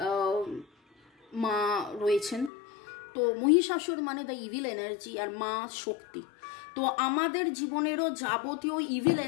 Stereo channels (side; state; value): right; drops out; at 2.5 s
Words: মা রয়েছেন। তো মহিষাসুর মানে দ্য ইভিল এনার্জি, আর মা শক্তি। তো আমাদের জীবনেরও যাবতীয় ইভিল